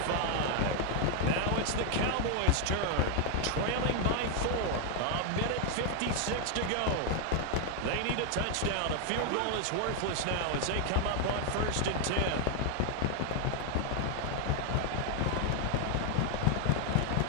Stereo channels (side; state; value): both; different; correlation 0.00